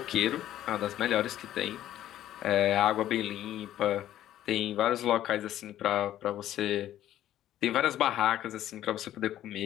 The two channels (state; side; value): quieter; right; 12.5 dB